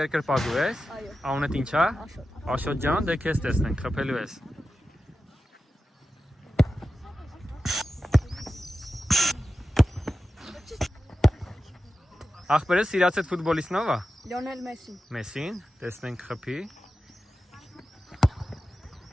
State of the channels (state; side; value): normal; both; correlation 0.92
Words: ես։ Այո։ Անունդ ինչ է։ Աշոտ ջան, դե քեզ տեսնենք, խփելու ես։ Աղբերը սիրացած ֆուտբոլիստն ով է։ Լիոնել Մեսին։ Մեսին, տեսնենք խփի։